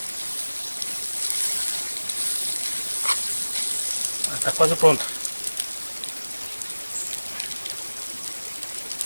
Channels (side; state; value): both; inverted; correlation -1.00